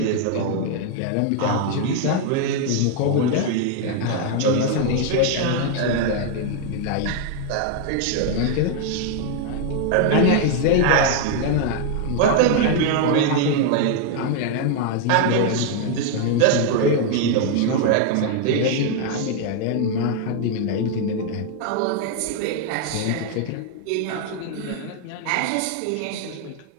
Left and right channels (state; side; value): different; both; correlation 0.00